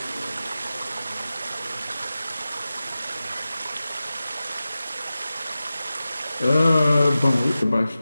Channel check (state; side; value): inverted; both; correlation -0.94